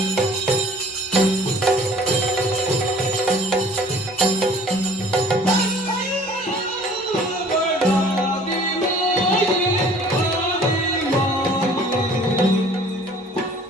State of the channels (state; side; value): normal; both; correlation 0.52